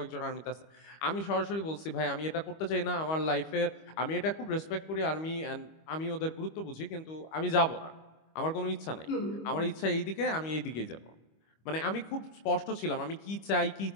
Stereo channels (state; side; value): late; right; 25 ms